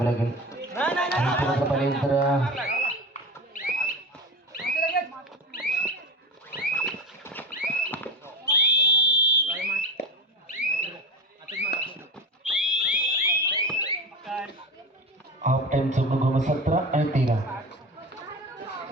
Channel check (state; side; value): normal; both; correlation 0.24